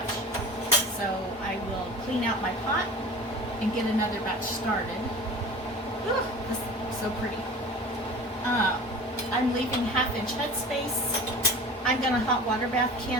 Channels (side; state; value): both; normal; correlation 0.39